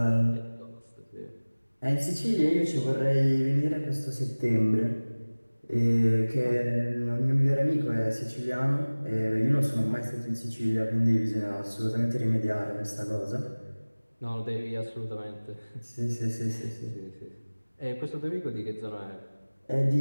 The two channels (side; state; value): both; inverted; correlation -1.00